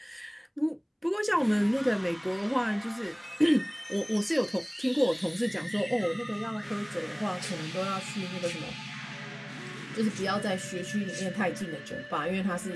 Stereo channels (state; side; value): identical; both; correlation 1.00